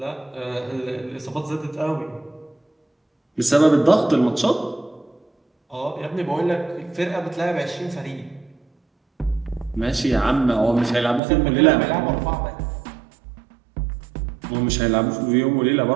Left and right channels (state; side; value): drops out; left; at 11.2 s